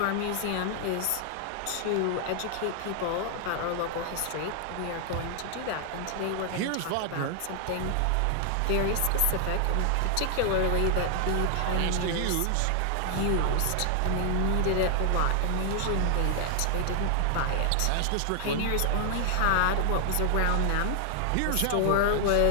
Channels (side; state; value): both; different; correlation 0.00